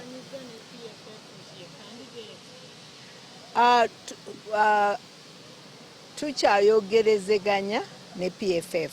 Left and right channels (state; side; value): identical; both; correlation 1.00